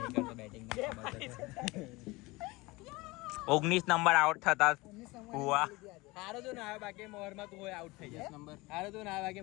બેટિંગ 19 નંબર આઉટ થતા હુआ. હારો તો ના આવે બાકી મોહરમાં તું હોય આઉટ થઈ જાય નંબર હારો તો ના આવે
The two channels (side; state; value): right; quieter; 22.4 dB